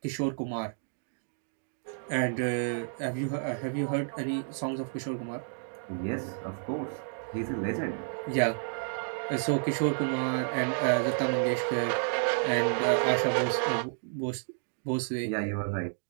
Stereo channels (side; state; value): left; silent; digital silence